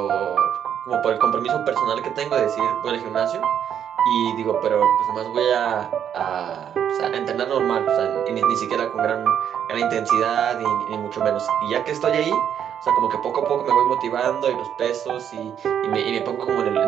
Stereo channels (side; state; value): left; quieter; 9.0 dB